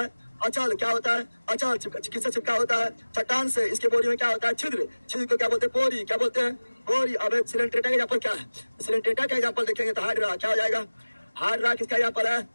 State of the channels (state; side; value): inverted; both; correlation -1.00